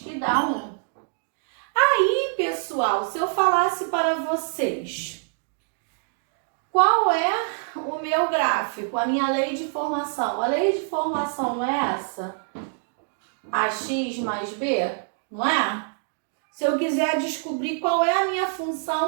dá 1. Aí, pessoal, se eu falasse para vocês qual é o meu gráfico, a minha lei de formação. A lei de formação não é essa? AX mais B, não é? Se eu quiser descobrir qual é a minha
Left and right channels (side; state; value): left; silent; digital silence